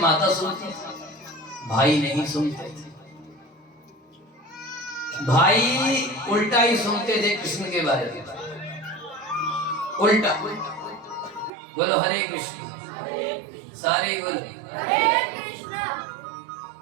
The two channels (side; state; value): left; drops out; at 11.5 s